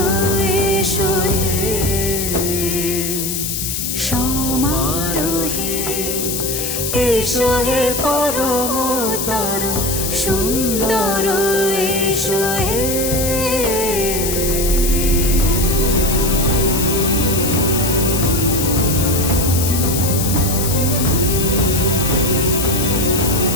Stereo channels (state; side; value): noise; left; hiss, 2 dB below the sound